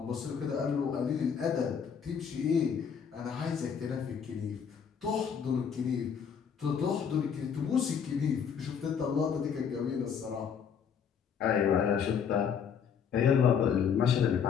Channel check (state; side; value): quieter; right; 7.2 dB